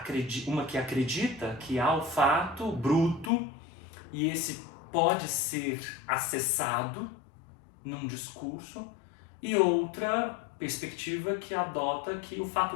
uma que acredita que há o fato bruto e esse pode ser acessado num discurso, e outra perspectiva que adota que o fato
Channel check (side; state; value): right; drops out; at 3.3 s